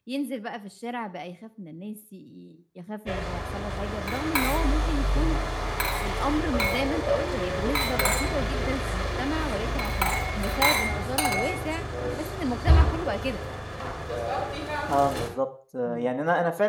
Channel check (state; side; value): identical; both; correlation 1.00